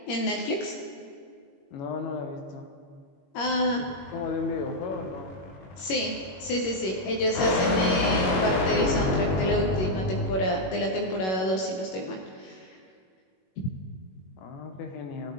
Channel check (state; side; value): late; right; 21 ms